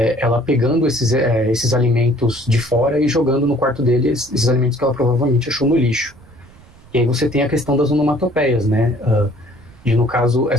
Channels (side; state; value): right; noise; rumble, 24 dB below the sound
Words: ela pegando esses alimentos de fora e jogando no quarto dele esses alimentos que ela provavelmente achou no lixo. E aí você tem a questão das onomatopeias, né, e no caso